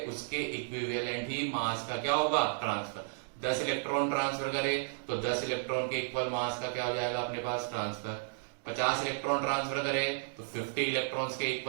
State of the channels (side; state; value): left; silent; digital silence